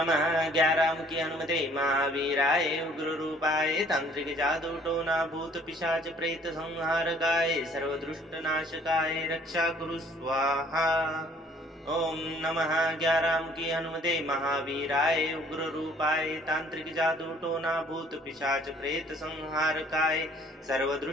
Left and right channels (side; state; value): both; normal; correlation 0.58